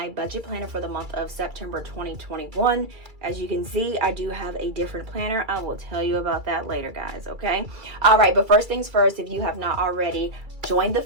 budget planner for the month of September 2021. As you can see, I do have a different planner. I will tell you about that later, guys, okay? All right, but first things first, if you have not already joined the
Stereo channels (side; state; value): left; late; 2.3 ms